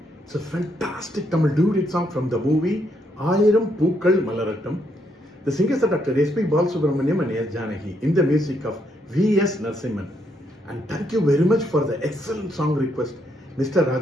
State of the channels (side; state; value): both; normal; correlation 0.75